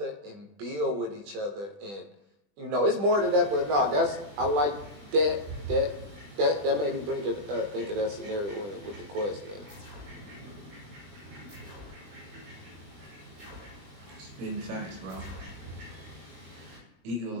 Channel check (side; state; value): left; late; 20 ms